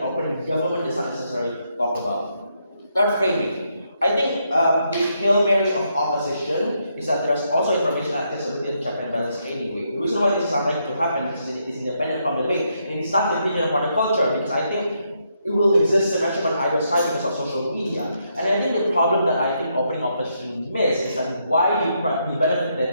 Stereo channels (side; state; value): both; inverted; correlation -0.78